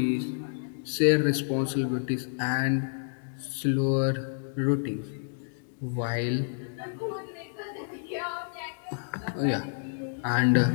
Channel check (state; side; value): silent; right; digital silence